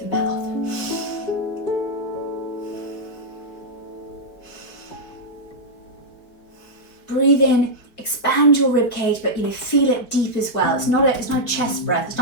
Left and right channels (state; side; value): late; right; 4.6 ms